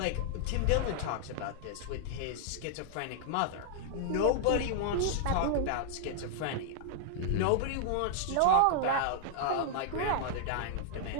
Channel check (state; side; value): different; both; correlation -0.01